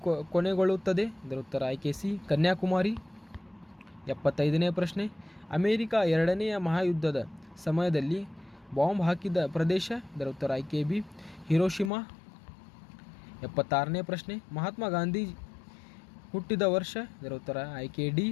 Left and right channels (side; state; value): right; drops out; at 11.9 s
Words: ಕೊನೆಗೊಳ್ಳುತ್ತದೆ? ಇದರ ಉತ್ತರ ಆಯ್ಕೆ ಸಿ, ಕನ್ಯಾಕುಮಾರಿ. 75ನೇ ಪ್ರಶ್ನೆ. ಅಮೆರಿಕ 2ನೇ ಮಹಾಯುದ್ಧದ ಸಮಯದಲ್ಲಿ ಬಾಂಬ್ ಹಾಕಿದ ಪ್ರದೇಶ? ಇದರ ಉತ್ತರ ಆಯ್ಕೆ ಬಿ, ಹಿರೋಶಿಮಾ. 76ನೇ ಪ್ರಶ್ನೆ. ಮಹಾತ್ಮ ಗಾಂಧಿ ಹುಟ್ಟಿದ ವರ್ಷ? ಇದರ ಉತ್ತರ ಆಯ್ಕೆ ಡಿ,